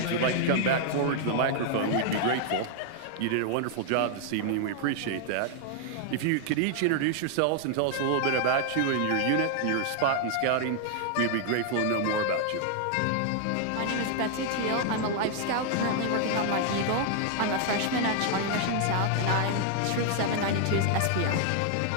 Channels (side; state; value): both; different; correlation 0.00